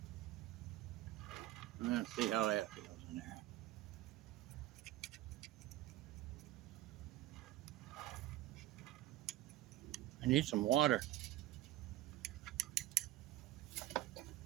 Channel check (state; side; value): quieter; left; 15.2 dB